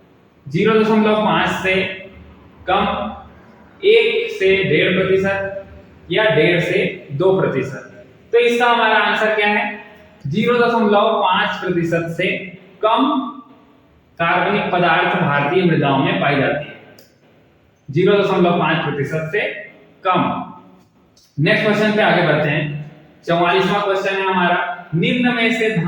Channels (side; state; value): both; identical; correlation 1.00